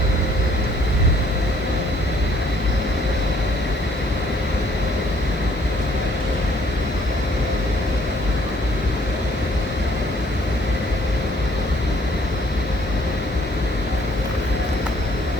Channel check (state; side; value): normal; both; correlation 0.62